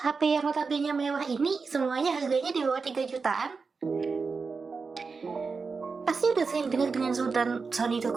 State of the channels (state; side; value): quieter; left; 4.7 dB